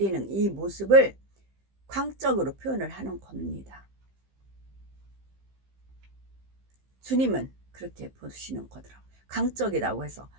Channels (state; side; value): late; left; 15 ms